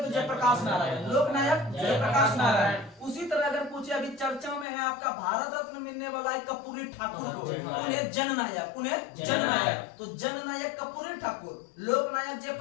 जयप्रकाश नारायण, लोक नायक जयप्रकाश नारायण। उसी तरह अगर पूछे अभी चर्चा में है आपका भारत रत्न मिलने वाला है कर्पूरी ठाकुर को, उन्हें जननायक, तो जननायक कर्पूरी ठाकुर, लोक नायक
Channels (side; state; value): right; drops out; at 4.7 s